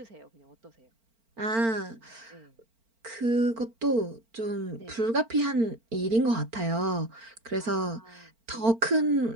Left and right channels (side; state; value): left; late; 4.4 ms